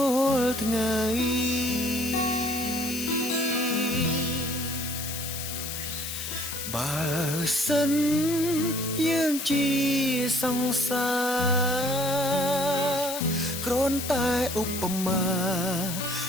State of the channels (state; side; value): noise; left; hiss, 6 dB below the sound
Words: ាល់ថ្ងៃបើសិនយើងជាសង្សារគ្រាន់តែឧបមា